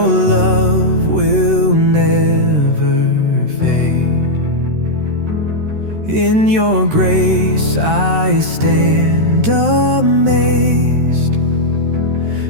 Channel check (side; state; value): left; late; 13 ms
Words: love will never fade. In your grace I stand amazed.